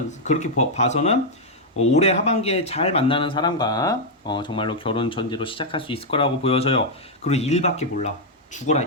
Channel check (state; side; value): normal; both; correlation -0.02